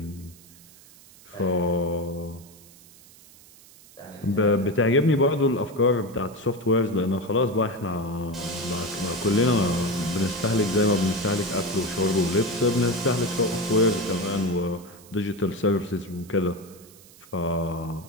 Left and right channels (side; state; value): right; noise; hiss, 23 dB below the sound